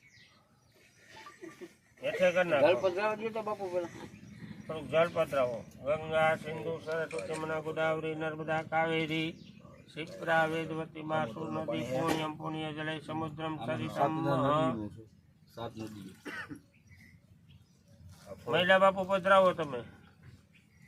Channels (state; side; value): identical; both; correlation 1.00